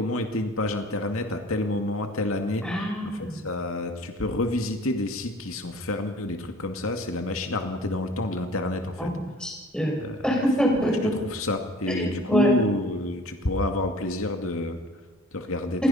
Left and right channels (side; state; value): both; normal; correlation 0.48